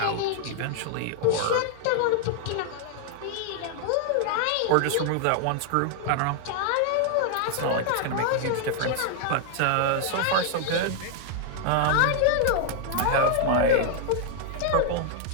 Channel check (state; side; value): different; both; correlation 0.00